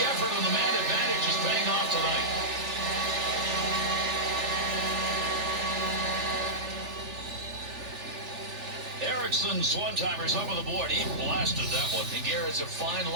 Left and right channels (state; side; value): late; left; 3.4 ms